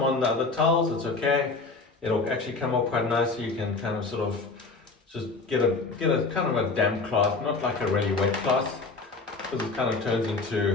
the other towels, it's okay. It'll actually come up quite nicely. You can kind of sort of just get a kind of a damp cloth, not like a really wet cloth, because it kind of turns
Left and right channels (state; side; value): quieter; right; 3.8 dB